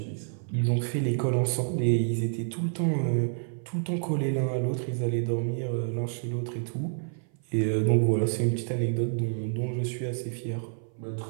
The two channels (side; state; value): left; silent; 56 dB below the other